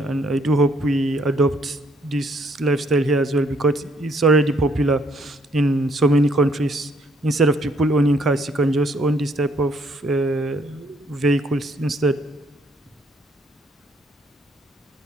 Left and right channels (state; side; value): normal; both; correlation 0.67